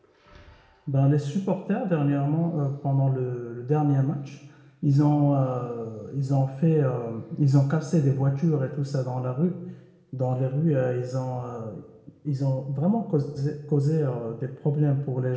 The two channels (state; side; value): identical; both; correlation 1.00